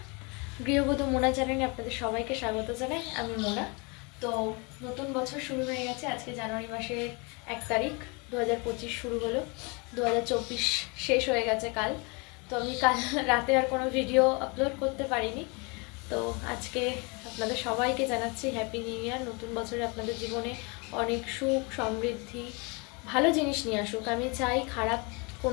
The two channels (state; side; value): quieter; right; 30.2 dB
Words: গৃহবধূ মোনা চ্যানেলে আপনাদের সবাইকে স্বাগত জানাই। আমি মোনা। তো নতুন বছর শুরু হয়ে গেছে। আজকে জানুয়ারি মাসের 1 তারিখ, 2025 শুরু হলো। 2024 শেষ হয়ে গেছে কাল। তো আমি কাল রাতে আর কোনো ভিডিও আপলোড করতে পারিনি। তো আজকে আপনাদের সবাইকে জানাচ্ছি হ্যাপি নিউ ইয়ার। নতুন বছরে আপনাদের জীবনে অনেক সুখ সমৃদ্ধি ভালো জিনিস নিয়ে আসুক। আমি চাই খারাপ